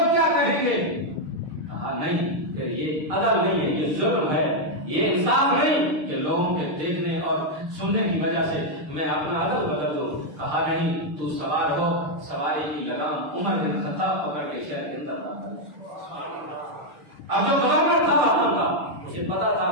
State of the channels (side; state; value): left; late; 6.5 ms